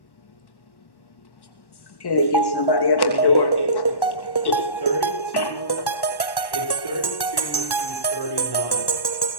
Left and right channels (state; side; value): late; right; 1.1 ms